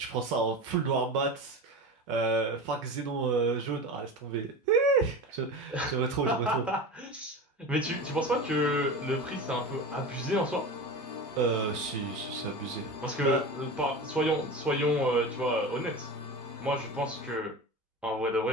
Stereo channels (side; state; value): both; normal; correlation 0.29